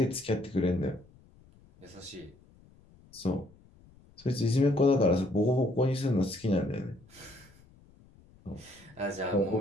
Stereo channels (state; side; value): noise; left; rumble, 27 dB below the sound